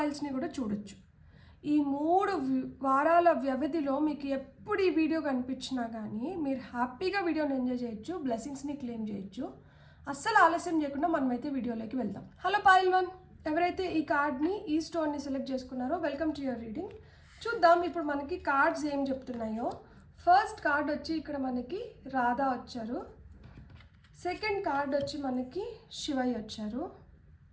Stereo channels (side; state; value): both; identical; correlation 1.00